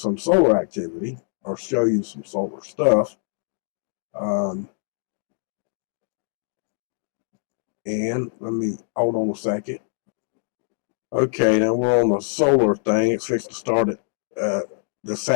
solar activity or show you some solar stuff. And let me hold on a second. Okay, now we're on the solar thing. It's fixed to start at the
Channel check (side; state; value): right; silent; digital silence